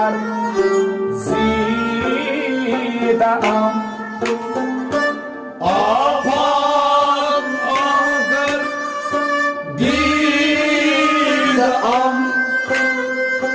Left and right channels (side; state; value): both; identical; correlation 1.00